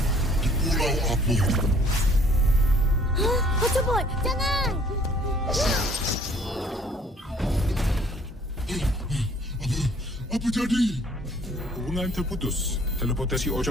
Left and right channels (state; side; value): normal; both; correlation 0.57